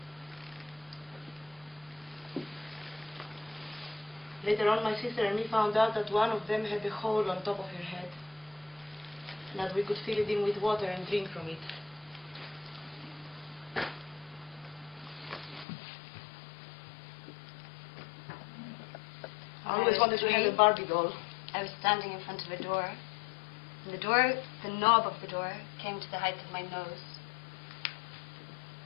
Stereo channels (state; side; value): drops out; right; at 15.7 s